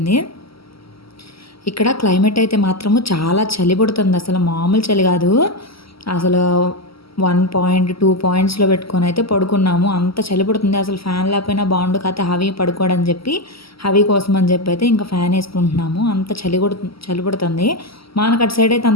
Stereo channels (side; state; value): right; late; 0.75 ms